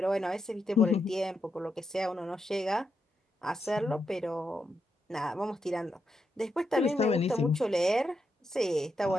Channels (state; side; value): normal; both; correlation 0.84